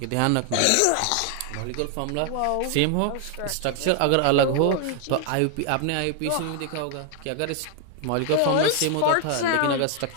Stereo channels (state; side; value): different; both; correlation 0.00